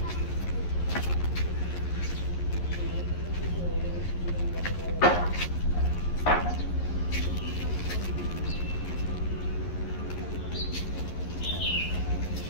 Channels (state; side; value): late; right; 11 ms